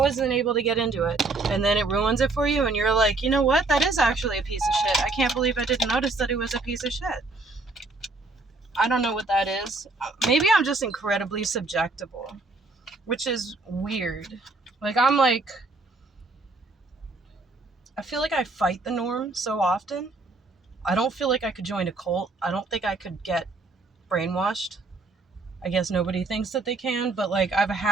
able to get into it. And then it ruins it for you. And you're like, you know what? That is actually a piece of shit. I can't believe I didn't notice that it was a piece of shit. I don't know what that is. Maybe I'm just incredibly subjectable, which is weird. Like, I feel like I fight the norm so often. I don't feel like I could join a cult. I don't think I could get brainwashed. I guess nobody thinks that they can, but like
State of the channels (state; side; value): quieter; left; 3.3 dB